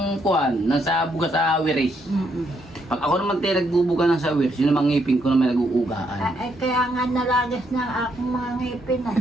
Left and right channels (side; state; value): both; normal; correlation 0.75